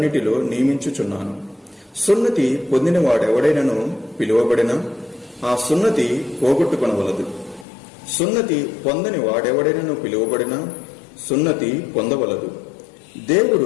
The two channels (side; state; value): right; drops out; at 7.7 s